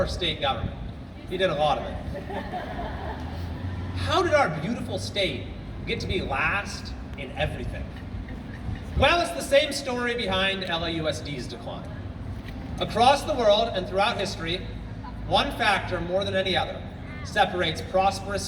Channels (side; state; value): both; identical; correlation 1.00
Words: state government? We did a lot of it. How did our beautiful state get to be last in everything? Well, it's the same story behind LAUSD's decline. Across the world and throughout history, one factor more than any other separates prosperous